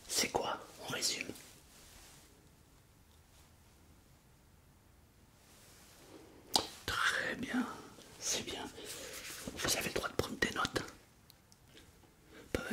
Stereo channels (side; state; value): both; identical; correlation 1.00